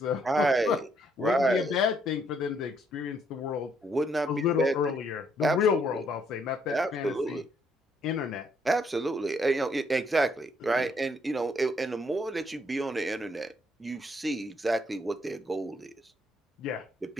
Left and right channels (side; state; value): both; normal; correlation 0.70